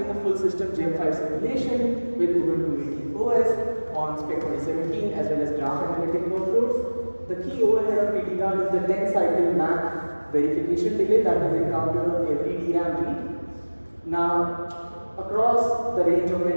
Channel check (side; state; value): both; inverted; correlation -1.00